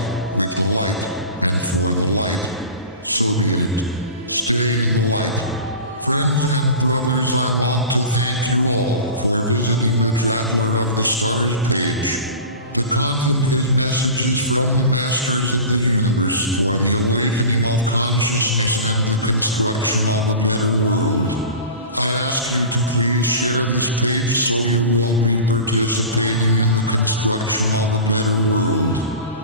with the light, and for the light. So be it. Stay in the light. Friends and brothers, I want to thank you all for visiting the Traveler of the Stars page. The content is messages from the Masters of the Universe for the awakening of consciousness and the construction of a better world. I ask you to please share this page so you will be participating in the construction of a better world.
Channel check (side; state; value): both; inverted; correlation -0.34